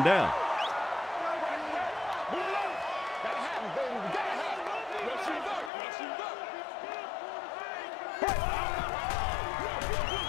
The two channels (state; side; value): drops out; right; at 5.7 s